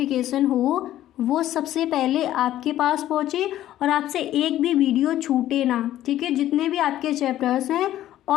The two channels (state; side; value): quieter; right; 13.1 dB